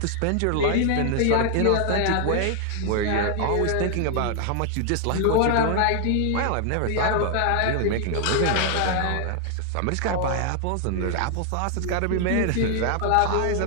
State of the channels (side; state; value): both; different; correlation 0.00